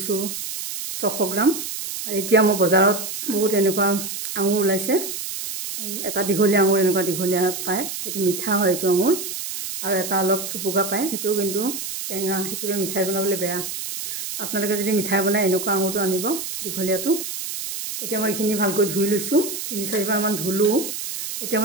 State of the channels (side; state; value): right; noise; hiss, 6 dB below the sound